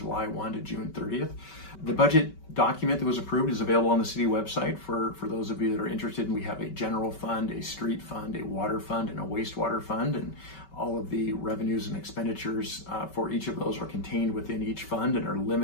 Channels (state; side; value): late; right; 5.2 ms